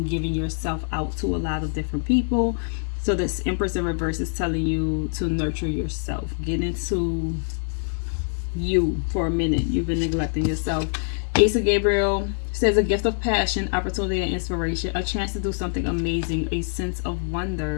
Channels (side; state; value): right; silent; digital silence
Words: giving yourself out to a lot of different people. So this Empress in reverse is telling you to nurture yourself. Get into you for a minute. You've been neglecting yourself. Ace of Gabriel says a gift of passion, opportunity, and inspiration. A chance to do something amazing. A sense of